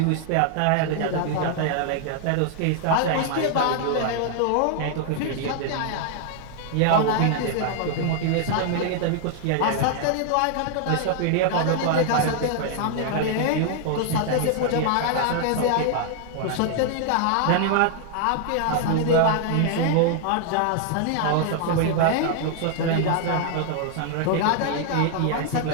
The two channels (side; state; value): both; different; correlation 0.00